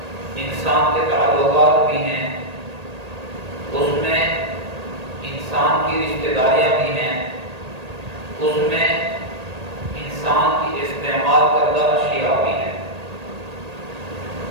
انسان کے تعلقات بھی ہیں، اس میں انسان کی رشتہ داریاں بھی ہیں، اس میں انسان کی استعمال کردہ اشیاء بھی ہیں۔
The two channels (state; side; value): late; left; 1.8 ms